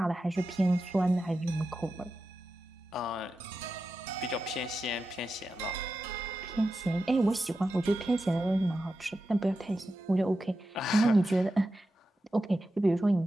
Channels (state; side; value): normal; both; correlation 0.91